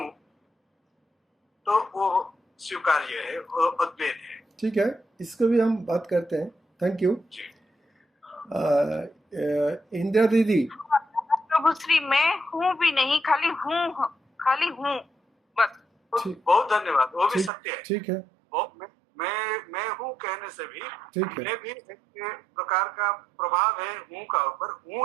तो वो स्वीकार्य है, वो अद्वैत है। ठीक है, इसको भी हम बात करते हैं। Thank you. जी इंदिरा दीदी। प्रभु श्री मैं हूँ भी नहीं, खाली हूँ बस। ठीक बहुत धन्यवाद, वो भी ठीक सत्य है। ठीक है, वो मैं हूँ कहने से भी ठीक है। मैं भी एक प्रकार का प्रभाव है हूँ का ऊपर,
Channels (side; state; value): left; drops out; at 17.5 s